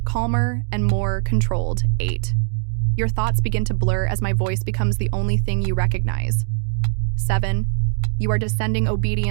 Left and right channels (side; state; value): left; silent; digital silence